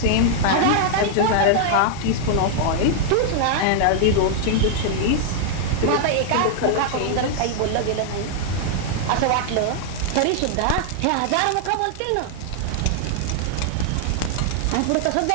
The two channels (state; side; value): different; both; correlation 0.00